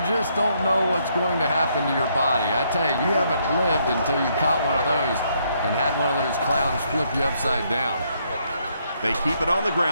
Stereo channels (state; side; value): inverted; both; correlation -0.72